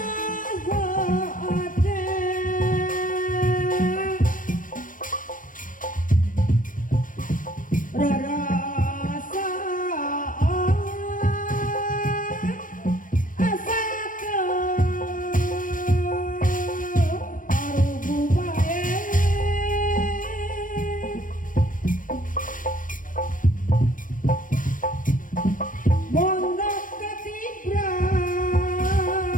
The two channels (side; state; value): right; late; 0.39 ms